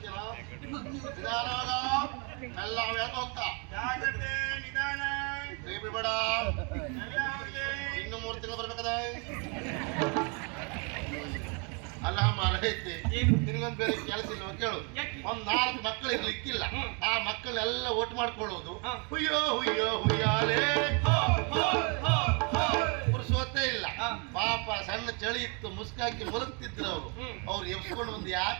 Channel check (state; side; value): quieter; left; 34.5 dB